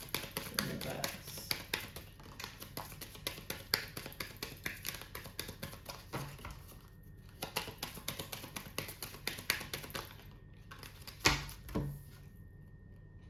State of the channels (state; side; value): identical; both; correlation 1.00